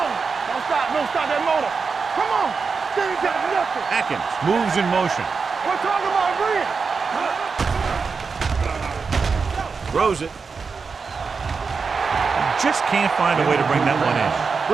Don't stop that motor. Come on. They ain't got nothing. Atkins moves in motion. We're talking about Green. Throws it. Just can't find a way to bring that one in.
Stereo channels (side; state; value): left; quieter; 5.1 dB